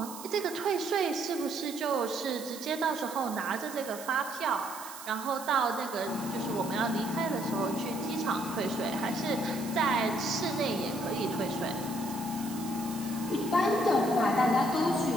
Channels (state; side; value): noise; right; hiss, 13 dB below the sound